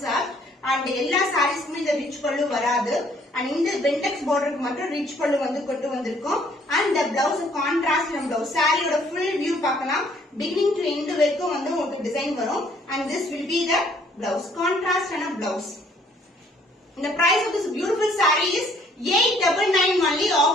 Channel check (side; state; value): both; normal; correlation 0.62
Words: and எல்லா சாரீஸ்க்குமே இந்த ரிச் பல்லு வராது. and இந்த பென்டெக்ஸ் பார்டருக்கு மட்டும் ரிச் பல்லு வந்து கொண்டு வந்திருக்கும். and the blouse contrast blouse. சாரியோட full view பார்க்கலாம். beginning to end வரைக்கும் வந்து உங்களுக்கு டிசைன் வரும். and this will be the blouse, contrast and a blouse. the price of this beautiful saree is 899 only.